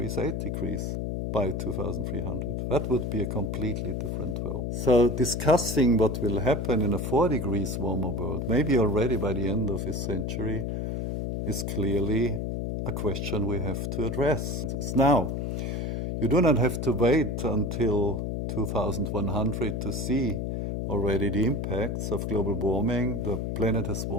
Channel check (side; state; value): left; noise; hum, 2 dB below the sound